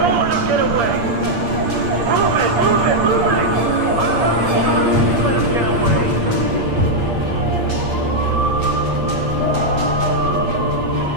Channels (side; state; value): left; late; 8.6 ms